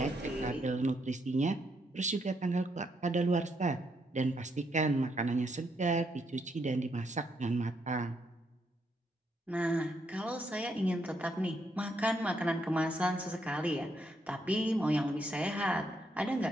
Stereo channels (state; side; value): normal; both; correlation 0.76